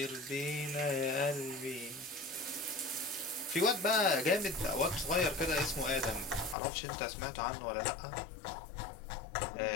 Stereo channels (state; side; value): drops out; right; at 6.6 s